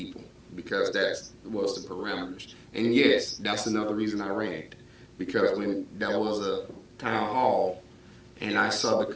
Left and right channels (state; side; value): identical; both; correlation 1.00